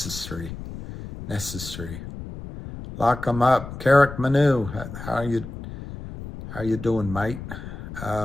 Lock them up. Carrick Manu, how you doing, mate?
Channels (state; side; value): noise; left; rumble, 11 dB below the sound